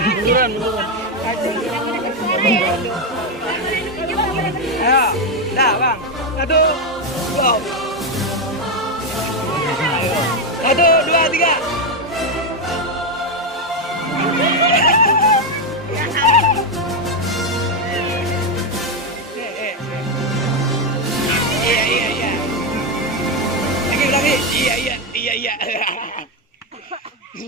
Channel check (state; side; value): normal; both; correlation 0.07